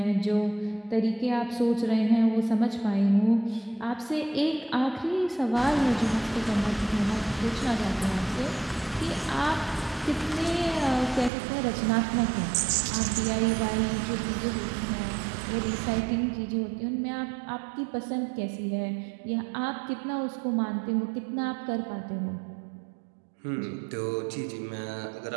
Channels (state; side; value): drops out; left; at 11.3 s